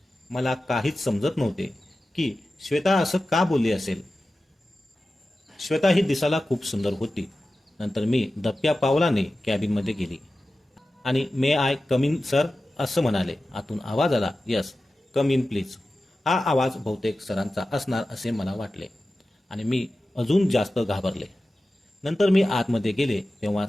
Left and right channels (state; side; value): normal; both; correlation 0.94